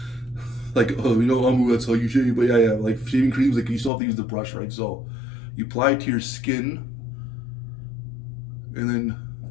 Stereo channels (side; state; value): right; drops out; at 3.9 s